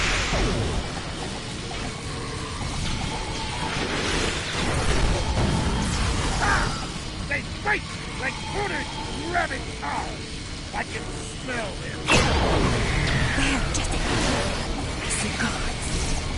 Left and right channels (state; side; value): identical; both; correlation 1.00